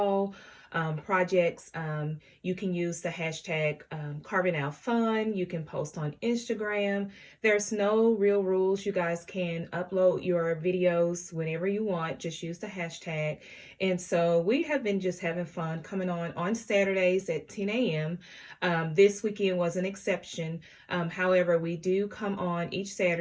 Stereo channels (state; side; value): identical; both; correlation 1.00